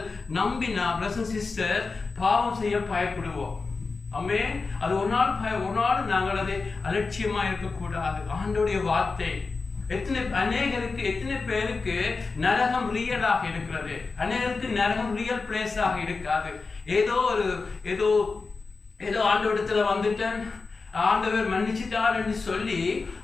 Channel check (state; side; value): quieter; right; 4.2 dB